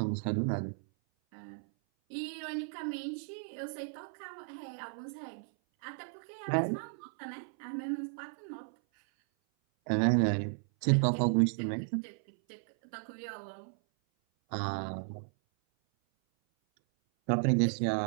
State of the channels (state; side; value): silent; left; 55 dB below the other